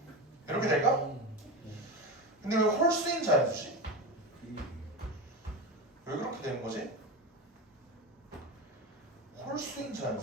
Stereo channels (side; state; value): both; normal; correlation 0.21